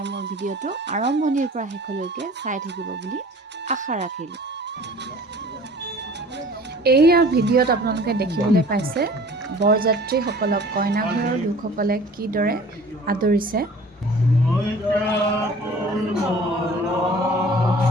মোৰ ভিডিঅ'টো আৰম্ভণিৰ পৰা শেষলৈকে চাই থাকিব বুলি আশা ৰাখিলোঁ। এইয়া ভিডিঅ'ত আপোনালোকে দেখিবলৈ পাইছে বৰযাত্ৰীসকলক কইনাঘৰৰ লোকসকলে কিদৰে আদৰিছে।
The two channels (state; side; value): normal; both; correlation 0.46